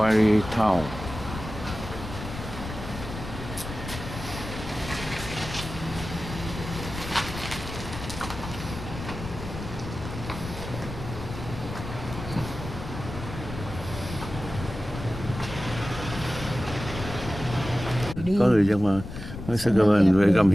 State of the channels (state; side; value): noise; left; rumble, 9 dB below the sound